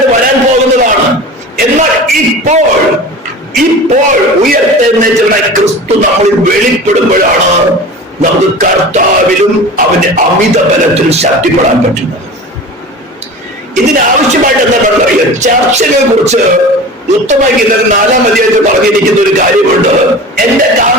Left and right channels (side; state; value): both; normal; correlation 0.35